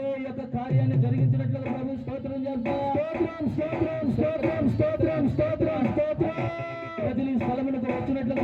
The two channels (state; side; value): identical; both; correlation 1.00